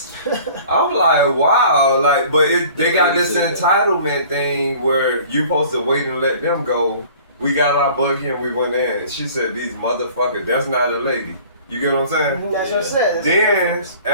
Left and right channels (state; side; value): inverted; both; correlation -0.48